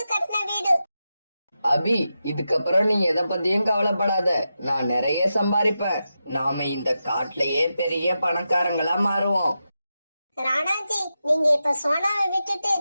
கட்டின வீடு. அபி, இதுக்கப்புறம் நீ எதை பத்தியும் கவலைப்படாத. நான் நிறைய சம்பாதிப்பேன். நாம இந்த காட்டுலயே பெரிய பணக்காரங்களா மாறுவோம். ராணாஜி, நீங்க இப்ப சோனாவை விட்டுட்டு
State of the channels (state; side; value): inverted; both; correlation -0.89